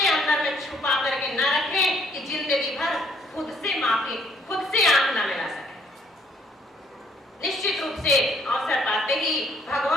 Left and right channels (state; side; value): normal; both; correlation 0.65